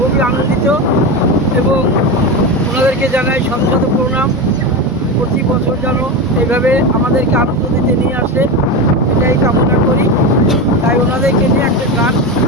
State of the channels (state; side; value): normal; both; correlation 0.19